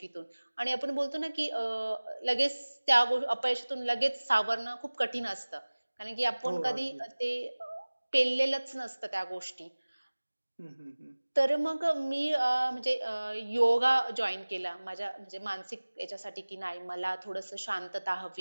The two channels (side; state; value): both; inverted; correlation -1.00